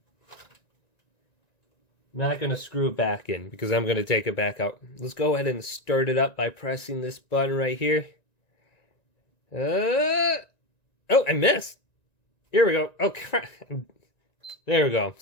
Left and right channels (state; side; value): late; right; 1.9 ms